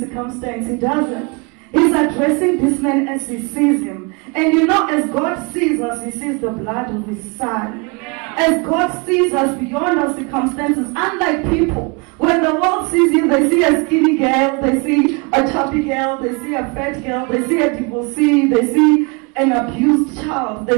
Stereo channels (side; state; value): left; quieter; 31.0 dB